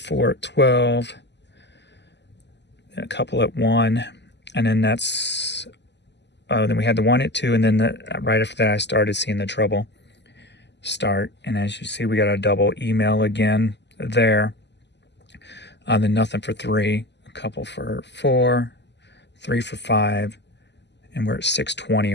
at 12. A couple at 1. And then that's... then we had the 1 at 2. And then right after that, I started seeing the trouble start. And as you see, we got a double email again there. Then nothing for 3. A couple for 4. 3 for 5. And we're at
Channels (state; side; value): late; right; 0.50 ms